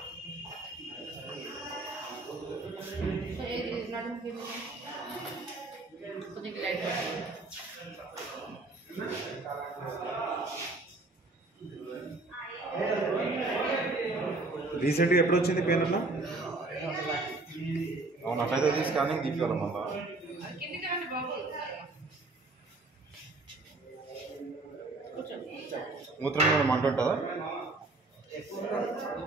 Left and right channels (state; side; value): quieter; left; 3.2 dB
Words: రీసెంట్గా ఎప్పుడు వచ్చింది పెయిన్ అన్న? అవును, అట్లయితే స్కానింగ్ తీసుకోవాలి. మళ్ళా మూత్రం కూడా మంట ఉంటుందా?